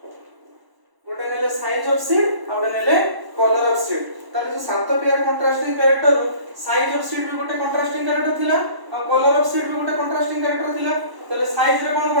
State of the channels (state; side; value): late; left; 1.0 ms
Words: गोटे नेले साइज ऑफ सीड और नेले कलर ऑफ सीड ताले जो सात pair contrasting character size of seed भी गोटे कंट्रास्टिंग कैरेक्टर थिला और कलर ऑफ सीड भी गोटे कंट्रास्टिंग कैरेक्टर थिला ताले साइज रे